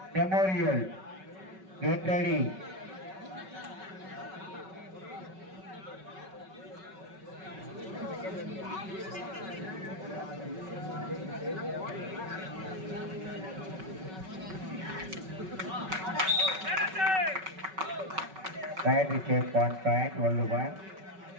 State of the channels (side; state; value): left; late; 5.3 ms